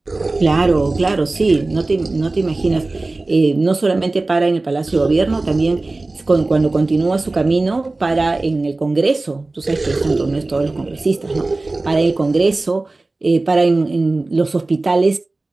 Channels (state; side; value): quieter; left; 3.2 dB